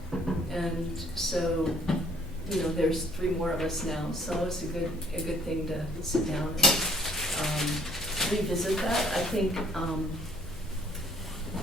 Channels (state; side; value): normal; both; correlation 0.59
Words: And so, there's 3 more of us now, so it's a good thing to sit down and revisit that. I think,